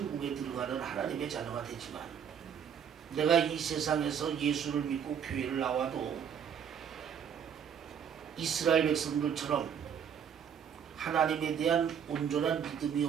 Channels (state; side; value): quieter; left; 8.0 dB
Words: 들어가는 하나님의 자녀가 되지만 내가 이 세상에서 예수를 믿고 교회를 나와도 이스라엘 백성들처럼 하나님에 대한 온전한 믿음이